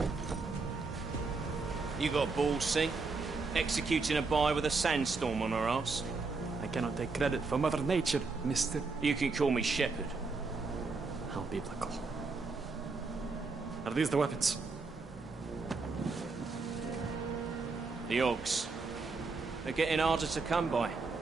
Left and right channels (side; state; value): left; quieter; 4.1 dB